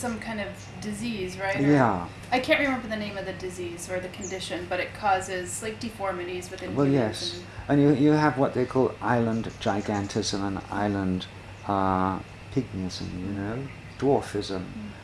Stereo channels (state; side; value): identical; both; correlation 1.00